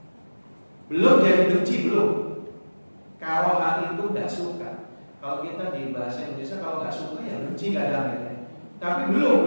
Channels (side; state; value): both; inverted; correlation -1.00